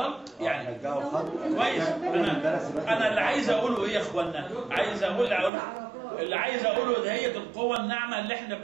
يعني رجعوا الخط كويس. انا اللي عايز اقوله ايه يا اخوانا؟ اللي عايز اقوله ده هي القوه الناعمه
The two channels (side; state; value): left; drops out; at 5.5 s